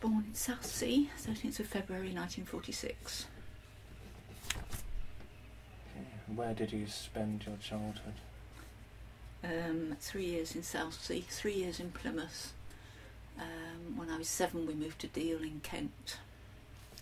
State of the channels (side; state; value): both; identical; correlation 1.00